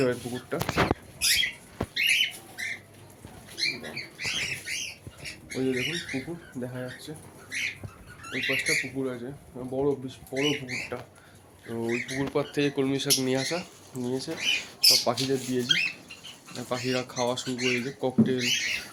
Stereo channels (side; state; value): both; identical; correlation 1.00